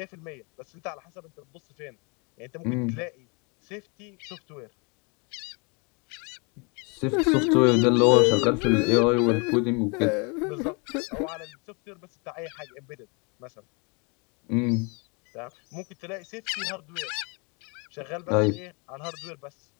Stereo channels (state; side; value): quieter; right; 32.6 dB